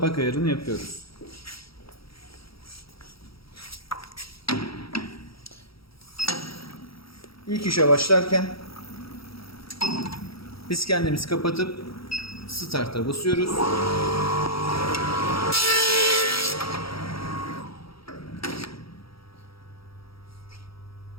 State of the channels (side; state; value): right; late; 0.75 ms